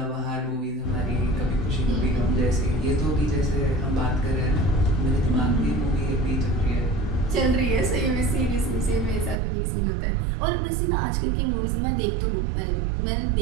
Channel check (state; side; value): drops out; left; at 9.4 s